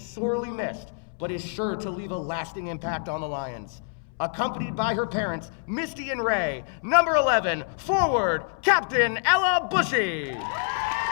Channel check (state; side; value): silent; right; 61 dB below the other